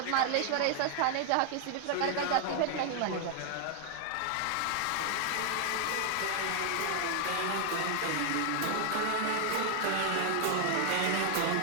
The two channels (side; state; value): both; different; correlation 0.00